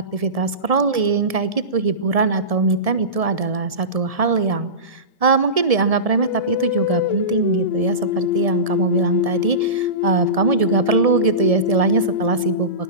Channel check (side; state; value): left; late; 1.7 ms